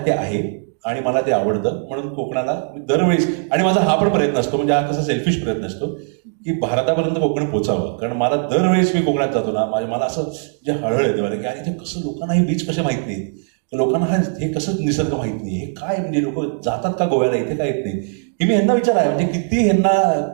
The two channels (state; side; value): silent; left; 63 dB below the other